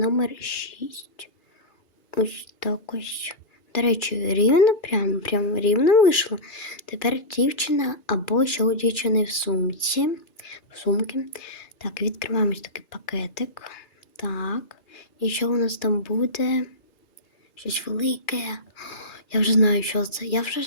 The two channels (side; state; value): right; late; 3.3 ms